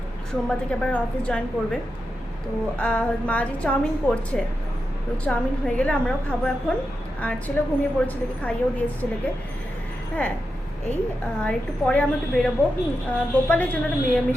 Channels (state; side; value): normal; both; correlation 0.88